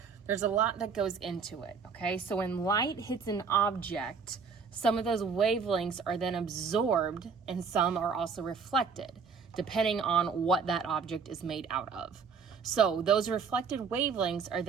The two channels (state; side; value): quieter; left; 5.6 dB